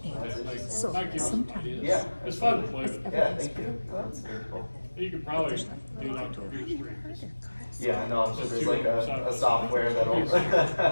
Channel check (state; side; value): inverted; both; correlation -1.00